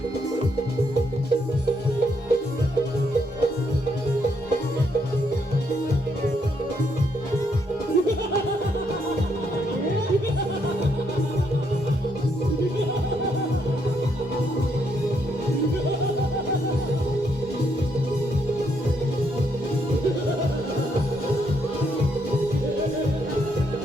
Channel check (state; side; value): normal; both; correlation 0.74